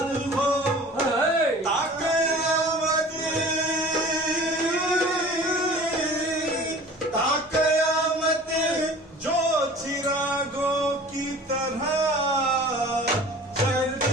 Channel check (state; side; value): normal; both; correlation 0.43